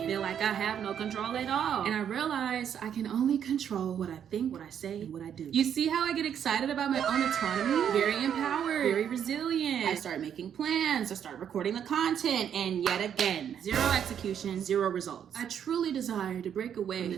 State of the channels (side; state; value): left; quieter; 8.8 dB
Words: feel like I have no control at all. And I realize I can only control what I think, what I say, and what I do. You see how I get excited about my own autonomy? Very empowered, very resilient. I start making plans, I start recording the content, and yet again, zero execution, zero results. I truly desire to break away from